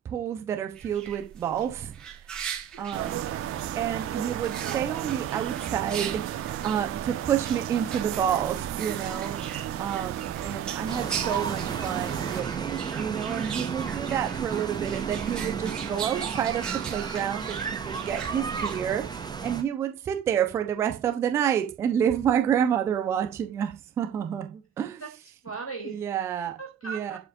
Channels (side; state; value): left; quieter; 8.6 dB